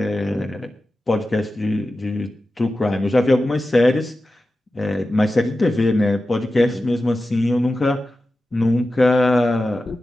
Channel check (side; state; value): both; normal; correlation 0.93